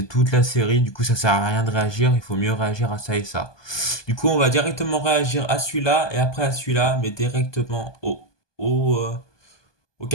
toute la série. Du coup, ça sert à rien de réagir. Il faut mieux réagir à ça et ça. Du coup, on va directement réagir à celui-là et après à celui-là, mais directement au, euh, au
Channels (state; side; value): late; right; 1.2 ms